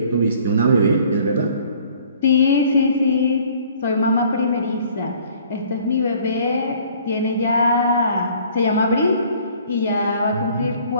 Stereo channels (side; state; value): both; inverted; correlation -0.55